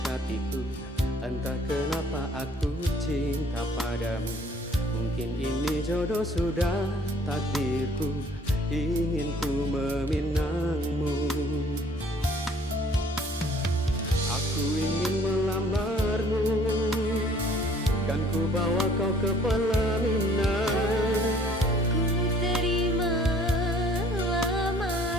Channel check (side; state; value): both; normal; correlation 0.57